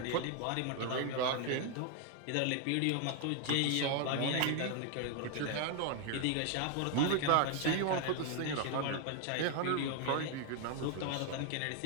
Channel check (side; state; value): both; different; correlation 0.01